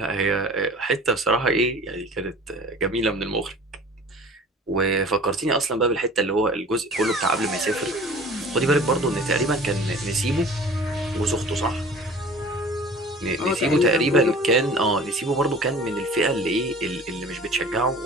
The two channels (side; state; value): both; normal; correlation 0.43